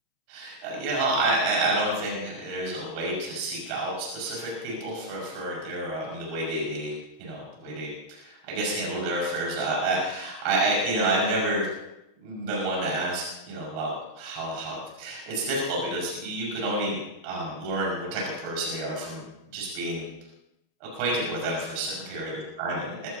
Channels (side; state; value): left; late; 6.4 ms